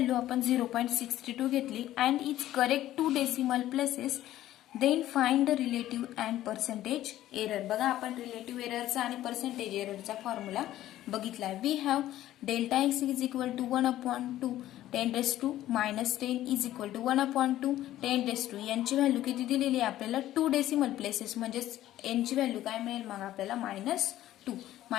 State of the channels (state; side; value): quieter; right; 13.8 dB